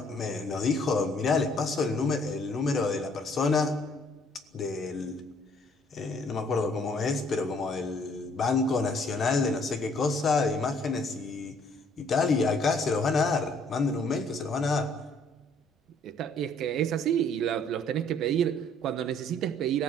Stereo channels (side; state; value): both; normal; correlation 0.62